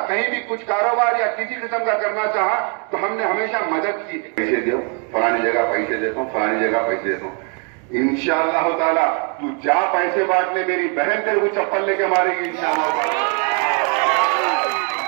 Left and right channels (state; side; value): quieter; left; 38.3 dB